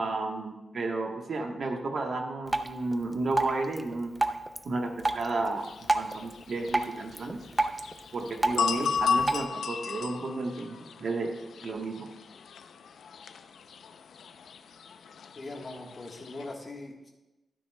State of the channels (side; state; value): both; normal; correlation 0.87